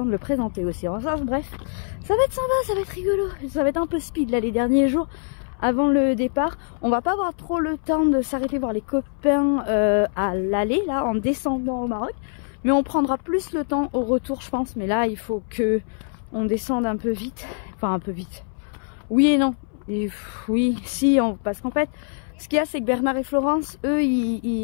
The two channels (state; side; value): silent; right; 63 dB below the other